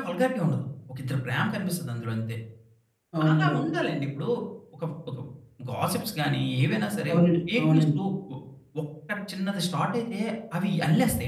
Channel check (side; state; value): both; identical; correlation 1.00